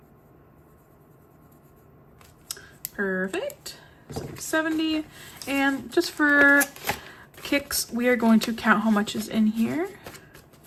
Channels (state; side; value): identical; both; correlation 1.00